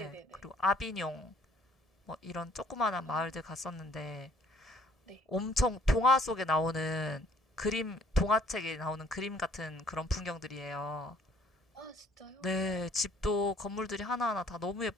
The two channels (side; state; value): both; normal; correlation 0.60